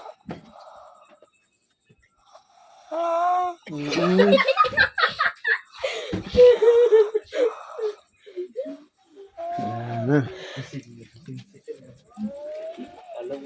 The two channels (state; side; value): identical; both; correlation 1.00